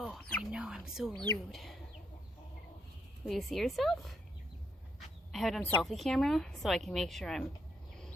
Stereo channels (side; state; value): both; normal; correlation 0.76